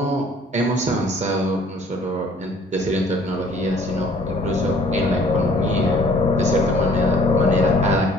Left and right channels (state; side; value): normal; both; correlation 0.56